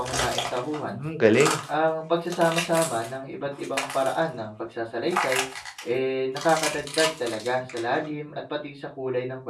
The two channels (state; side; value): identical; both; correlation 1.00